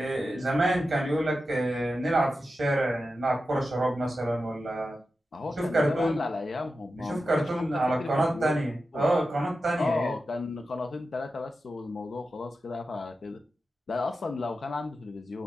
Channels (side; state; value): both; normal; correlation 0.91